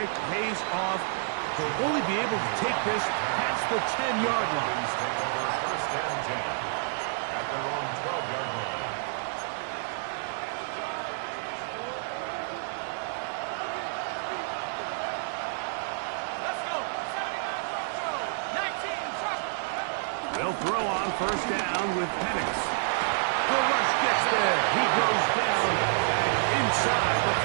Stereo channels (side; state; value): left; silent; 59 dB below the other